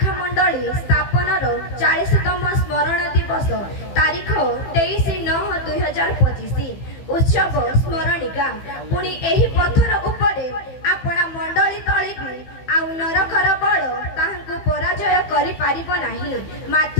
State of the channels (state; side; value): late; right; 15 ms